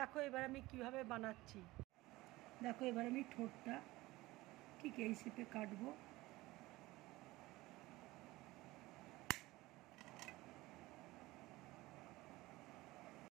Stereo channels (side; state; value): left; quieter; 19.4 dB